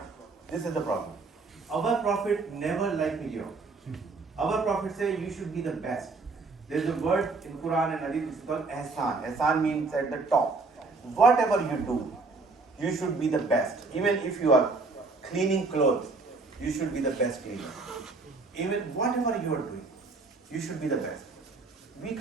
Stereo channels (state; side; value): quieter; left; 3.9 dB